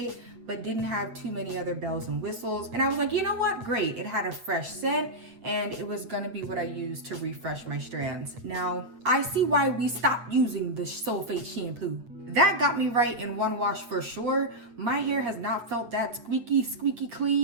but didn't have too many other bells and whistles. And I was like, you know what? Great. It had a fresh scent and it was gonna be what I used to refresh my strands. Now, I see why we stopped using the sulfate shampoo. That got me right in one wash for sure. My hair has not felt that squeaky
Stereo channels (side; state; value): left; late; 8.7 ms